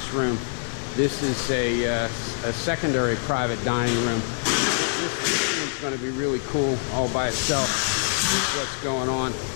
room, this is a secondary private dining room. It's going to be really cool all by itself. This is what's going on.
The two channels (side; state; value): right; silent; 62 dB below the other